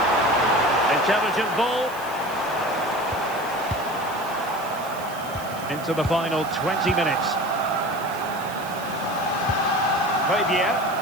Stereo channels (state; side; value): noise; right; hiss, 17 dB below the sound